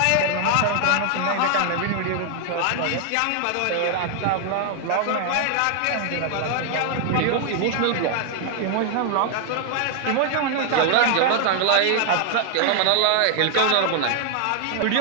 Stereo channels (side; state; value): both; different; correlation 0.00